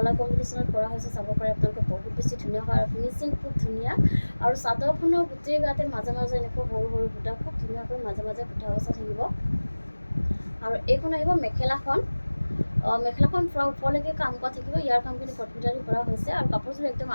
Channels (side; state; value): both; inverted; correlation -1.00